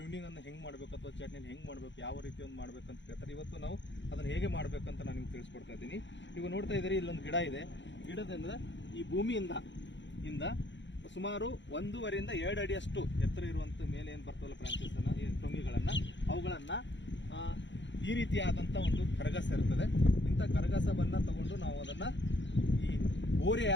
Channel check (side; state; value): right; late; 0.53 ms